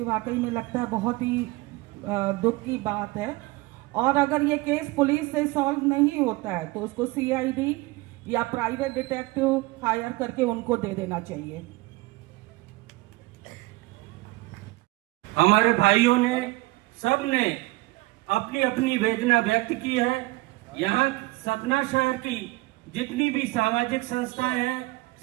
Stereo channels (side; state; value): left; quieter; 21.2 dB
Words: वाकई में लगता है बहुत ही दुख की बात है। और अगर ये केस पुलिस से सॉल्व नहीं होता है तो उसको सीआईडी या प्राइवेट डिटेक्टिव हायर करके उनको दे देना चाहिए। हमारे भाइयों ने, सब ने अपनी अपनी वेदना व्यक्त की है। यहाँ सतना शहर की जितनी भी सामाजिक संस्थाएं हैं,